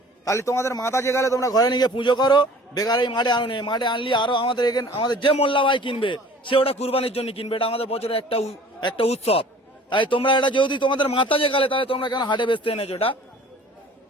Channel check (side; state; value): both; normal; correlation 0.48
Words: তাহলে তোমাদের মাথা যে গেলে তোমরা ঘরে নিয়ে পুজো করো, বেকার এই মাঠে আনুনি। মাঠে আনলি আরো আমাদের এখানে আমাদের যে মোল্লা ভাই কিনবে সে ওটা কুরবানির জন্য কিনবে, এটা আমাদের বছরের একটা উৎসব। তাই তোমরা এটা যেহেতু তোমাদের মাথা যে গেলে, তাহলে তোমরা কেন হাটে বেচতে এনেছো? এটা